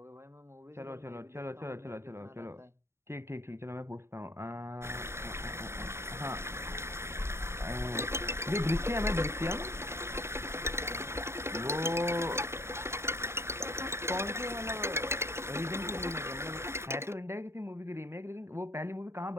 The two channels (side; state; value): left; late; 0.13 ms